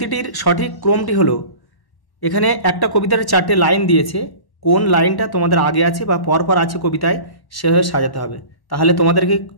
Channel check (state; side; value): late; right; 1.1 ms